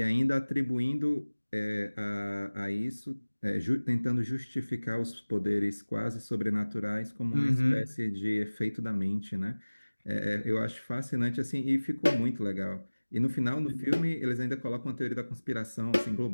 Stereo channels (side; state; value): both; inverted; correlation -1.00